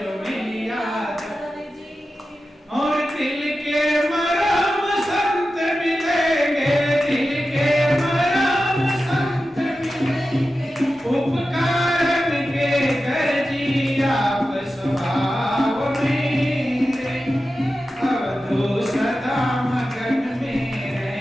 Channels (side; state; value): both; normal; correlation 0.93